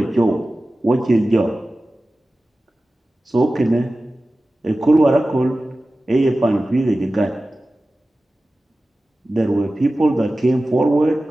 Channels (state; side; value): normal; both; correlation 0.96